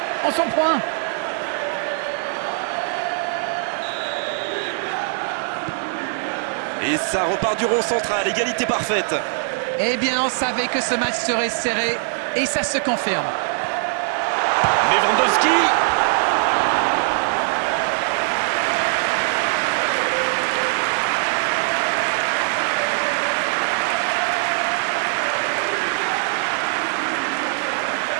on s'en prend. Et ça repart du rond central, égalité parfaite. Eh bien, on savait que ce match serait serré et ça se confirme. Lewandowski.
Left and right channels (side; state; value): left; silent; 65 dB below the other